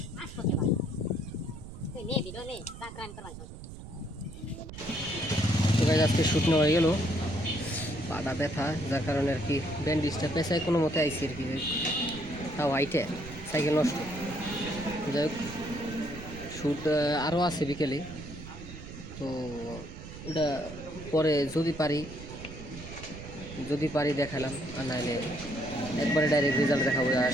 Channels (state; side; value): noise; right; rumble, 13 dB below the sound